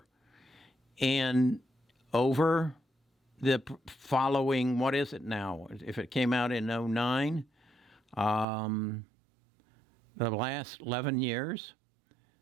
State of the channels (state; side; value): drops out; left; at 8.5 s